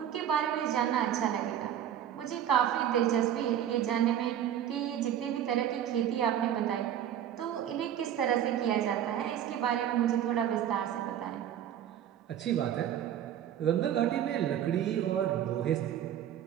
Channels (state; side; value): quieter; left; 10.4 dB